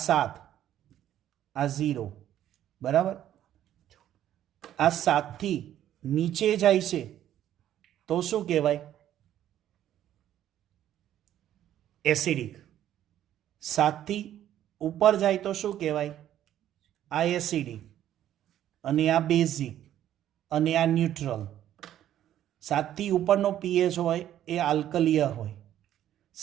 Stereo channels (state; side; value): quieter; left; 11.6 dB